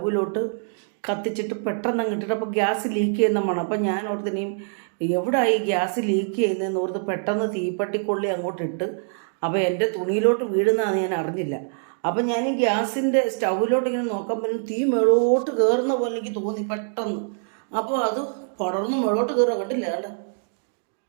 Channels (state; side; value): silent; left; digital silence